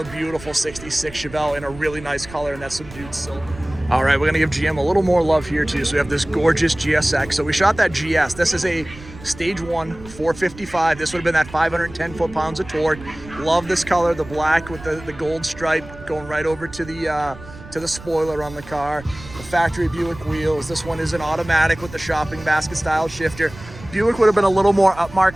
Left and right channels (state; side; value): noise; right; rumble, 17 dB below the sound